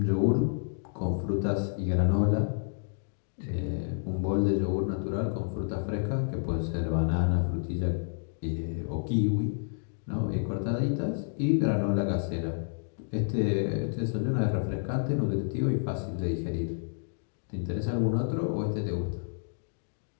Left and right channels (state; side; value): silent; right; digital silence